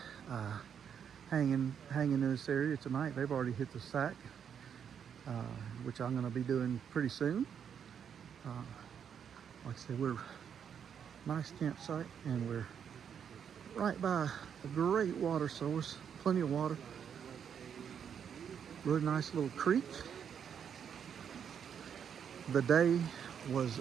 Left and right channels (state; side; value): quieter; left; 7.9 dB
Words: hanging in this area tonight. They've already hit the sack, which I'm going to be doing pretty soon. Like I said, we're nice campsite, and we're right by a great water source, plenty of water. Really nice little creek. The day was